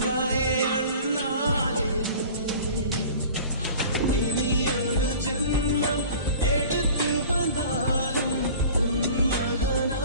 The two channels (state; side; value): inverted; both; correlation -0.43